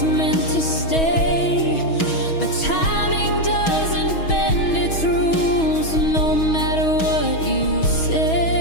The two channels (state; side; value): late; right; 6.2 ms